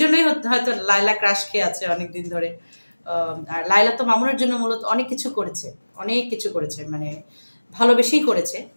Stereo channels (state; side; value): inverted; both; correlation -1.00